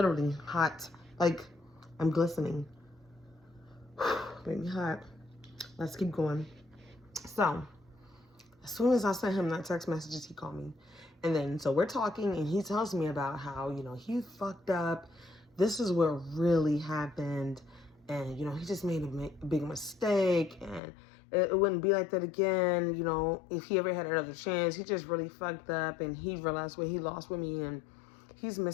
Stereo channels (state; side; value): drops out; right; at 20.8 s